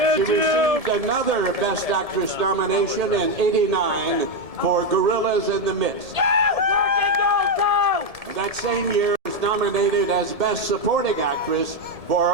another Best Actress nomination in '89 for Gorillas in the Mist. that same year was nominated as Best Supporting Actress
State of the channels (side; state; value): left; late; 1.8 ms